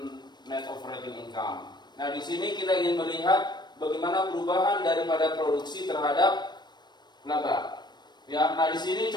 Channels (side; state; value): right; late; 0.21 ms